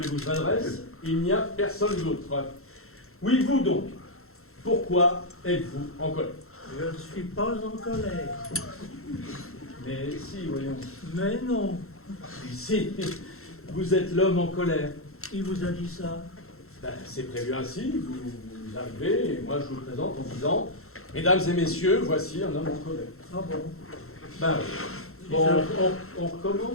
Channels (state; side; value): late; right; 0.62 ms